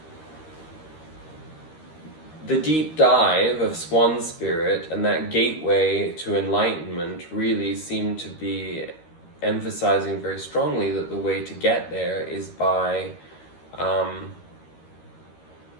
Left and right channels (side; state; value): right; late; 13 ms